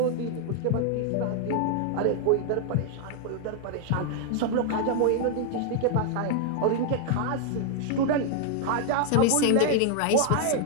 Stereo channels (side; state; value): both; different; correlation 0.00